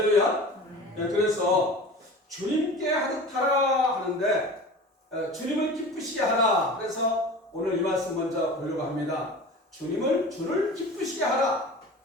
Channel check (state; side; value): normal; both; correlation 0.36